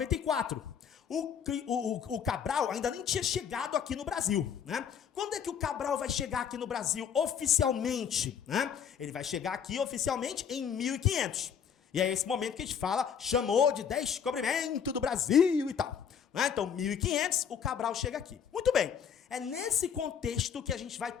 O Cabral ainda nem tinha chegado aqui no Brasil, né? Quando é que o Cabral vai chegar aqui no Brasil oficialmente, né? Ele vai chegar aqui oficialmente em 1500. E é esse momento que a gente fala, chamou de descobrimento do Brasil e tal, né? Então, 1500, o Cabral chega aqui. Muito bem, é nesse contexto que a gente vai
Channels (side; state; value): right; quieter; 7.7 dB